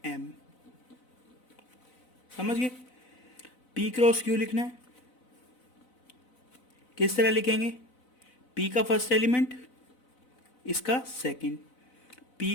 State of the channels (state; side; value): late; right; 4.0 ms